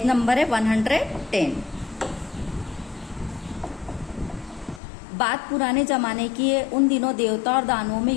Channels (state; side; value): drops out; right; at 4.8 s